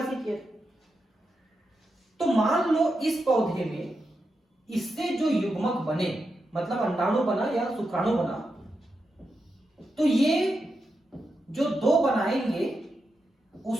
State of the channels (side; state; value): both; normal; correlation 0.87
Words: किया। तो मान लो इस पौधे में इससे जो युग्मक बने, मतलब अंडाणु बना या शुक्राणु बना, तो ये जो 2 बनाएंगे